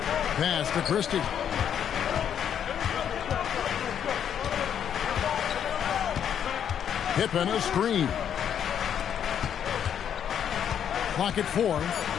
Pass to Christie. Pippen a screen. Clock at 4.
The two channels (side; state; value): right; quieter; 8.8 dB